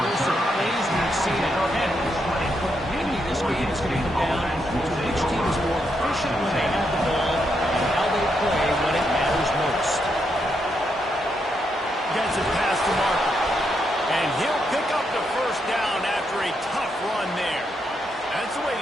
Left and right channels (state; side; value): normal; both; correlation 0.80